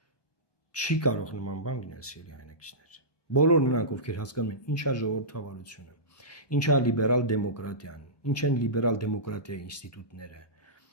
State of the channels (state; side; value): late; right; 1.2 ms